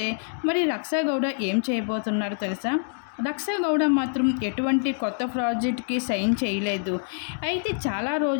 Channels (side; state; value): right; silent; 58 dB below the other